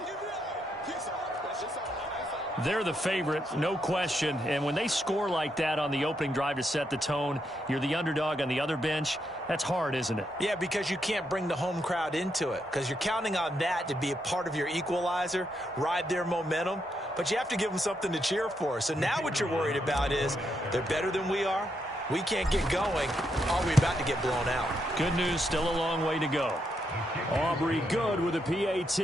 They're the favorite, no question. And when they score like that on the opening drive to set the tone, you're the underdog on the other bench. That's hard, isn't it? Yeah, because you can't bring the home crowd into it because you're counting on that to be a part of your equalizer, ride their momentum. But you have to give them something to cheer for. So now what you're worried about is they're better than we are. We can't get going. Are we about to get blown out? Good news, still a long way to go. Aubrey good with a PAT.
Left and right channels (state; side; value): normal; both; correlation 0.80